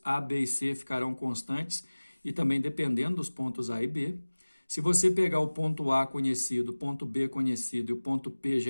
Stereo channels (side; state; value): both; inverted; correlation -1.00